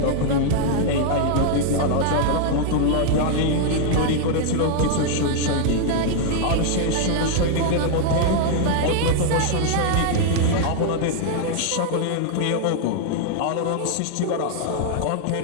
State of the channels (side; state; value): both; different; correlation 0.00